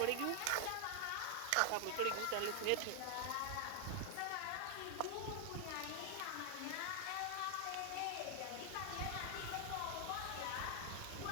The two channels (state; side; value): different; both; correlation 0.00